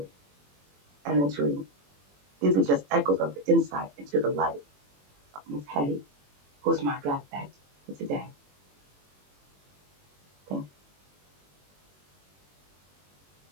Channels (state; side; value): late; left; 21 ms